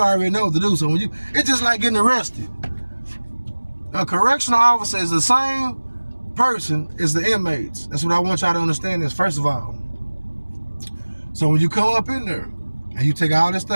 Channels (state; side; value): inverted; both; correlation -1.00